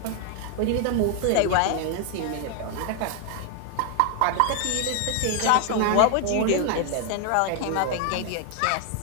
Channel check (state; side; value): different; both; correlation 0.01